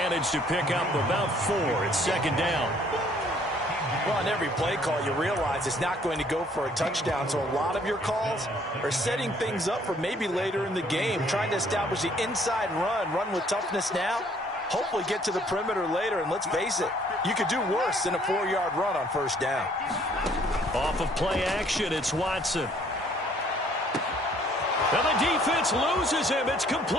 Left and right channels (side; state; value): both; normal; correlation 0.61